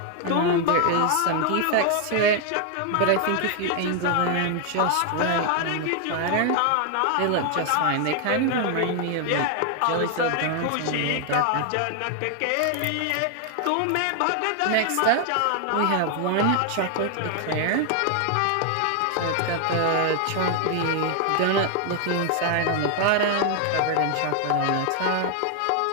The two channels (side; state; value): both; different; correlation 0.00